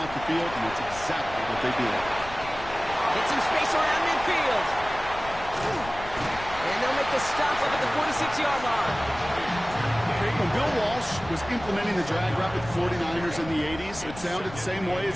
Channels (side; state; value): left; noise; rumble, 14 dB below the sound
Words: the field, and that's exactly what they did. Get some space around midfield. And they'll make the stop up at the 46-yard line. When Bill Walsh was implementing the drag route with the 49ers in the 80s, it sounded the same way